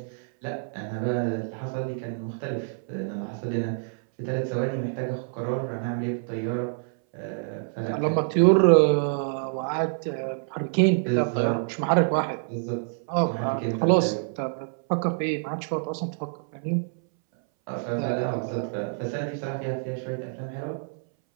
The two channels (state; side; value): silent; left; 60 dB below the other